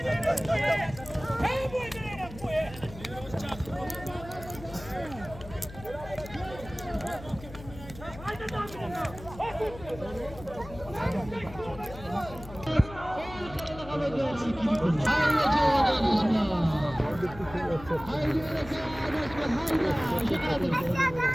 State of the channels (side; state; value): left; noise; hum, 15 dB below the sound